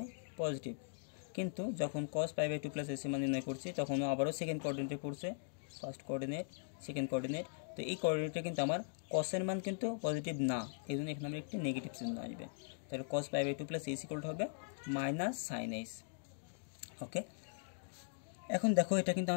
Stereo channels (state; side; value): silent; right; digital silence